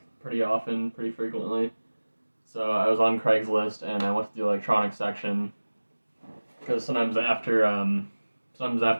pretty often, pretty frequently. So I was on Craigslist and I went to the electronics section because sometimes after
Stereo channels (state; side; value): inverted; both; correlation -1.00